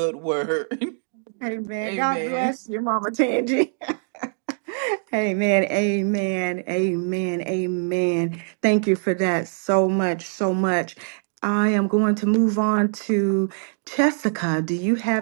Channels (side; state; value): left; silent; digital silence